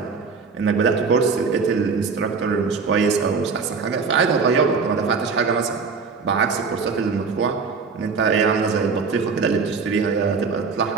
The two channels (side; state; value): left; quieter; 5.0 dB